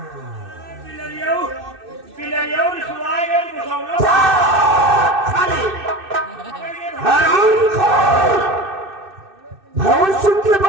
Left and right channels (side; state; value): left; late; 2.6 ms